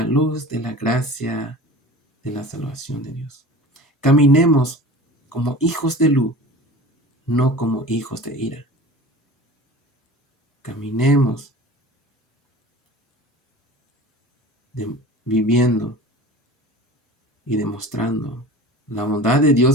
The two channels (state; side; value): normal; both; correlation 0.38